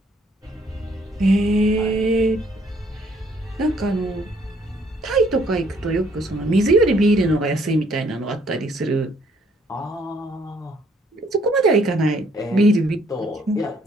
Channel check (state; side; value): normal; both; correlation 0.65